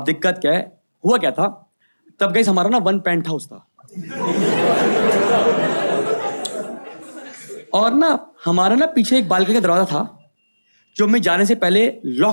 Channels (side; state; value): both; inverted; correlation -1.00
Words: दिक्कत क्या है, हुआ क्या था तब गाइस, हमारा ना 1 पेंट हाउस था, और ना हमारा ना पीछे एक बालकनी का दरवाजा था जो मैं जाने से पहले